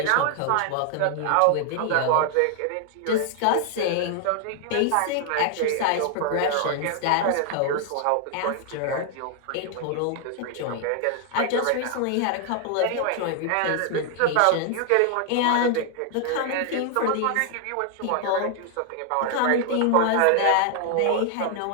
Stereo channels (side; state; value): both; different; correlation 0.00